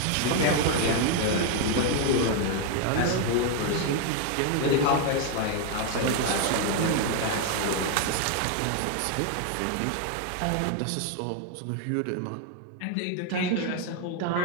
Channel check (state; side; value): different; both; correlation 0.01